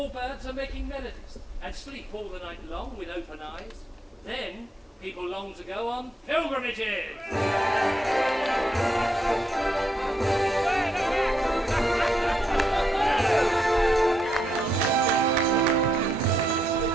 birds are making melodies and sleep all the night long with open eyes, then people long to go on pilgrimages.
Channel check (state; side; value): normal; both; correlation 0.79